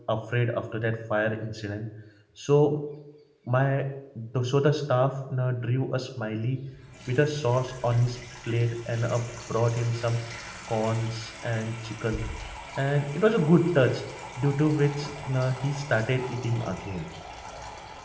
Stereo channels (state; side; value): identical; both; correlation 1.00